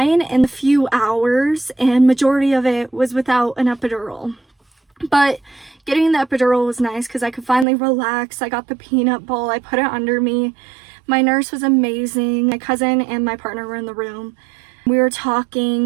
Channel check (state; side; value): drops out; left; at 7.7 s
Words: in a few hours, and majority of it was without an epidural. But getting the epidural was nice because I could finally relax. I got the peanut ball, I put it under me. My nurse was amazing. My cousin and my partner were in the room. We were